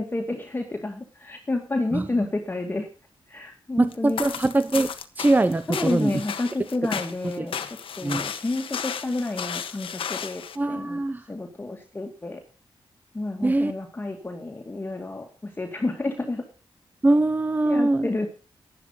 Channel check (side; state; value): both; normal; correlation 0.89